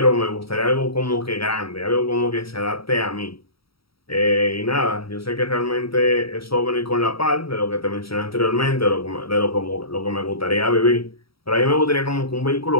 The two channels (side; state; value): right; late; 0.75 ms